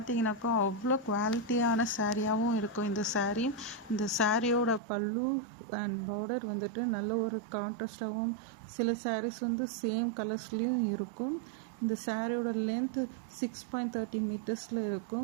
அவ்வளோ குவாலிட்டியான சாரியாகவும் இருக்கும். இந்த சாரியோட பல்லு அண்ட் பார்டர் வந்துட்டு நல்ல ஒரு கான்ட்ராஸ்டாகவும், சில sarees வந்து சேம் கலர்ஸ்லேயும் இருக்கும். இந்த சாரியோட லென்த்து 6.30 மீட்டர்ஸில்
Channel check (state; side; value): drops out; left; at 4.8 s